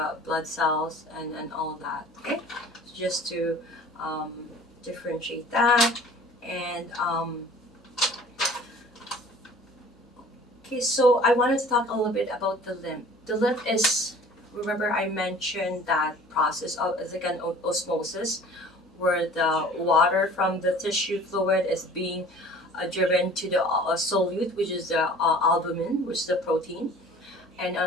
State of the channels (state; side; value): normal; both; correlation 0.47